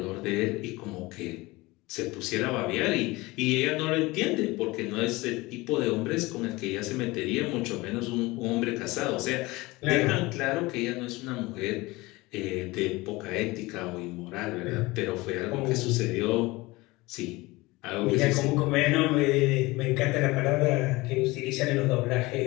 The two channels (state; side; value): quieter; right; 21.6 dB